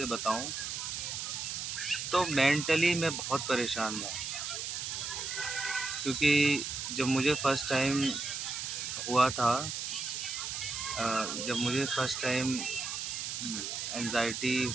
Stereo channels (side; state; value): right; noise; hiss, 4 dB below the sound